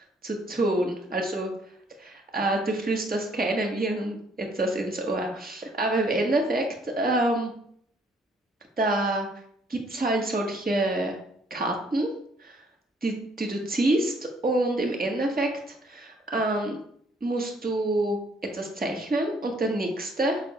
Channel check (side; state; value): both; normal; correlation 0.64